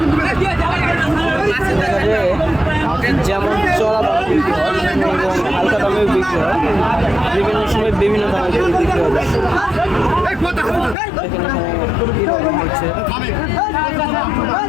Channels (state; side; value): drops out; right; at 11.0 s